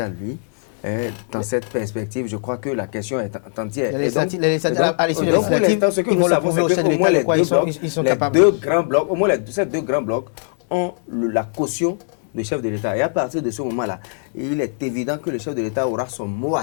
lui, dans cette perspective, je crois que la question est entière. À l'issue de la législative, ils vont le prouver au chef de l'État de quoi ils sont capables. Au moins ces 2 grands blocs ont la caution du chef de l'État. Et à partir de ce moment-là, il est évident que le chef de l'État aura son mot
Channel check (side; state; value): right; silent; 65 dB below the other